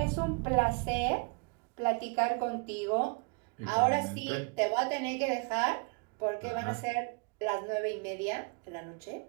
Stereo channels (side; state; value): left; quieter; 31.7 dB